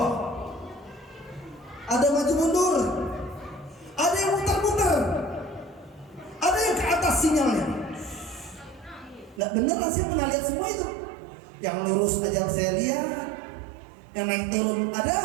ada maju mundur, ada yang muter-muter, ada yang ke atas sinyalnya. Nggak bener lah, saya pernah lihat semua itu. Yang lurus aja saya lihat, yang naik turun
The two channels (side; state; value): left; drops out; at 9.4 s